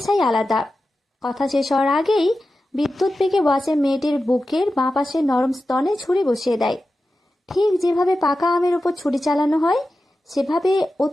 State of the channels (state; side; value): normal; both; correlation 0.93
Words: আলাদা। কথা শেষ হওয়ার আগেই বিদ্যুৎ বেগে ওয়াসিম মেয়েটির বুকের বাঁ পাশে নরম স্তনে ছুরি বসিয়ে দেয়। ঠিক যেভাবে পাকা আমের উপর ছুরি চালানো হয়, সেভাবে